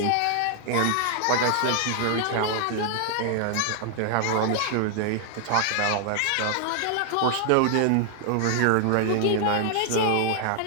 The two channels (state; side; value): different; both; correlation 0.00